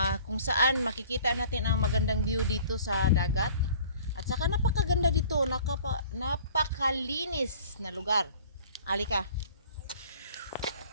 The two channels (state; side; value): inverted; both; correlation -0.50